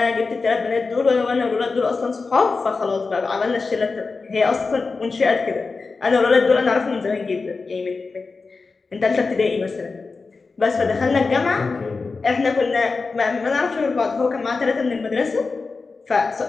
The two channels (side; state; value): right; quieter; 4.2 dB